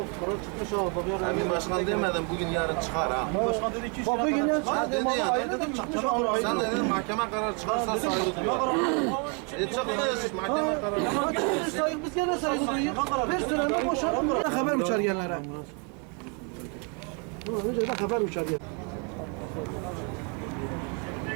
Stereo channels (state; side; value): quieter; left; 36.2 dB